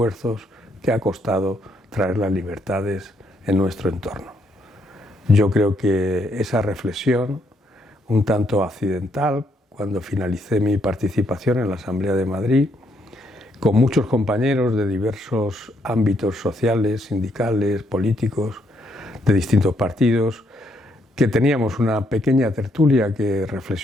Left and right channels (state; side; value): normal; both; correlation 0.74